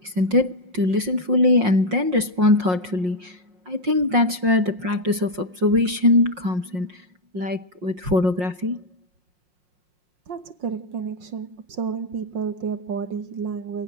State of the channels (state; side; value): late; left; 5.6 ms